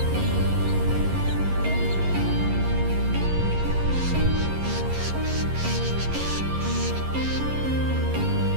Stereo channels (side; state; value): left; late; 11 ms